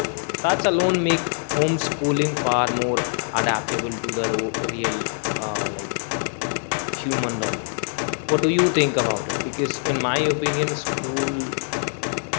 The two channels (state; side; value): silent; right; digital silence